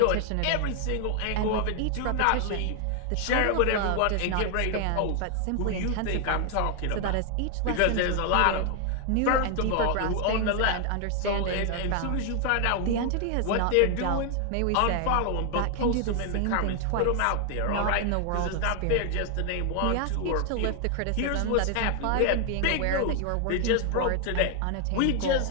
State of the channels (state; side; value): different; both; correlation 0.00